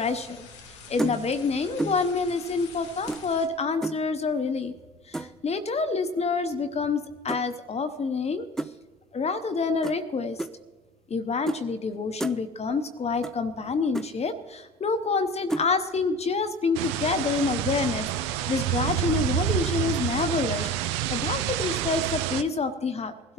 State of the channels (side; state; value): both; normal; correlation 0.39